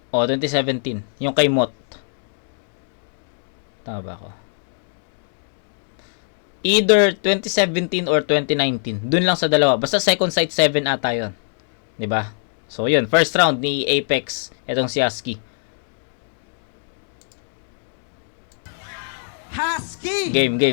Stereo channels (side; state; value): right; silent; 64 dB below the other